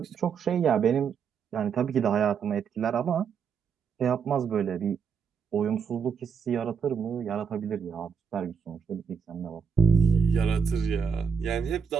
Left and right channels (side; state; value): left; quieter; 6.4 dB